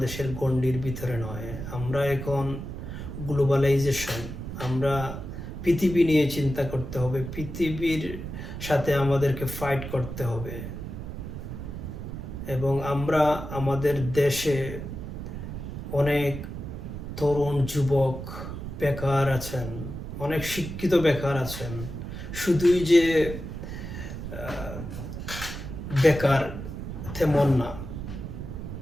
গণ্ডির ভিতরে নয়, আমরা এখন গ্লোবালাইজেশন, আমরা পৃথিবী নিয়ে চিন্তা করতে হবে, পৃথিবীর সাথে আমাদেরকে ফাইট করতে হবে। এবং আমরা আমাদের দেশে অনেক তরুণ যুবক বেকার আছেন, অনেক শিক্ষিত বেকার আছেন। শুধুই যে বেকার তেমন না,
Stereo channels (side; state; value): right; noise; rumble, 8 dB below the sound